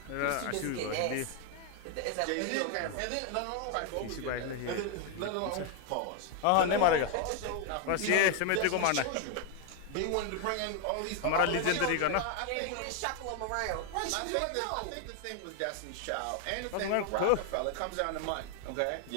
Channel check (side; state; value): both; different; correlation 0.01